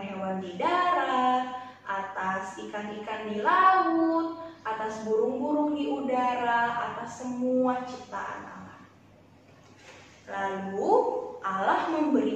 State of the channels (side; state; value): both; identical; correlation 1.00